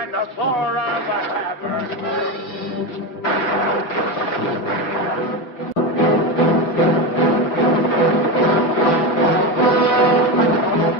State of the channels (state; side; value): late; right; 6.0 ms